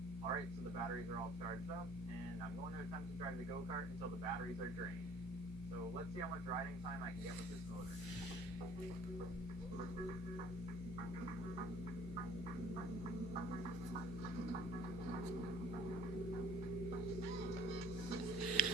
Alright, so the batteries are all charged up, and I'm going to attempt to drive the go-kart until the batteries are drained. So let's see how much riding time I can get with this motor.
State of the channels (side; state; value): both; normal; correlation 0.51